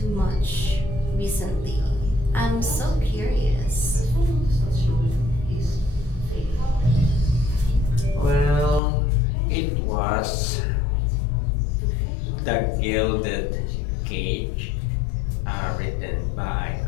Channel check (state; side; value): drops out; right; at 8.8 s